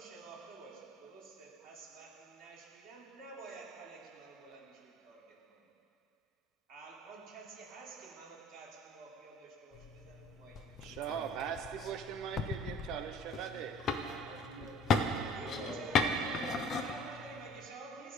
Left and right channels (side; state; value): both; normal; correlation 0.50